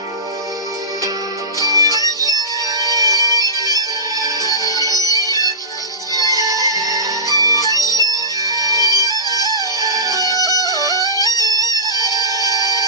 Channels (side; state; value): both; normal; correlation -0.20